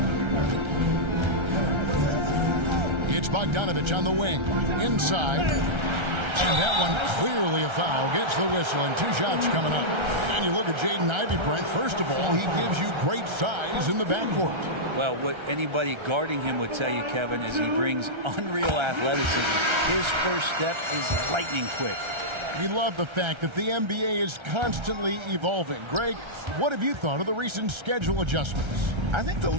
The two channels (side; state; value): left; late; 1.3 ms